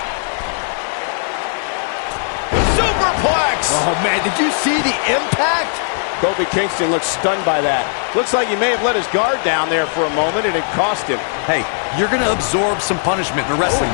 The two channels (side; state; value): right; silent; digital silence